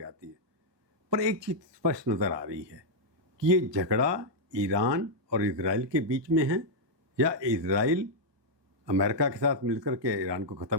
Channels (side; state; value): left; late; 1.2 ms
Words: है। पर एक चीज़ स्पष्ट नज़र आ रही है कि ये झगड़ा ईरान और इजराइल के बीच में है, या इजराइल अमेरिका के साथ मिलकर के ईरान को